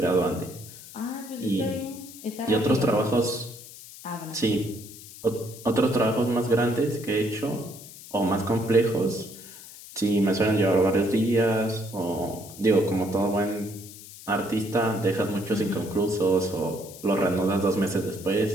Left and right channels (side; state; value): left; noise; hiss, 16 dB below the sound